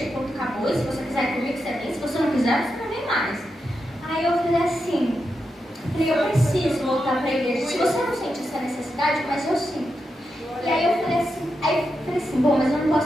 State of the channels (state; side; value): normal; both; correlation 0.86